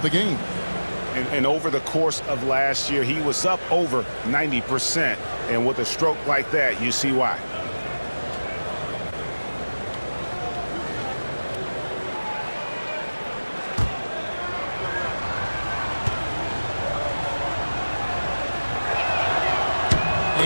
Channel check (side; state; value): both; inverted; correlation -1.00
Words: the game. And over the course of last year, he was up over 90%. And with a stroke like that, you see why.